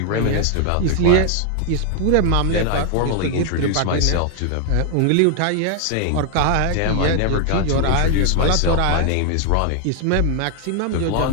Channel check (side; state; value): both; different; correlation 0.00